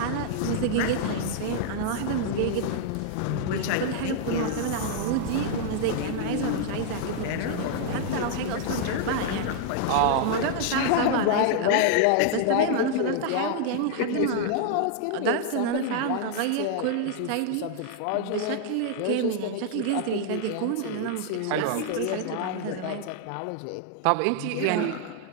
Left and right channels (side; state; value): both; different; correlation 0.00